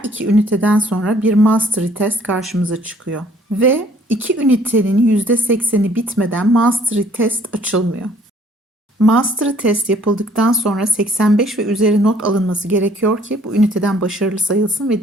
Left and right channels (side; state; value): both; normal; correlation 0.60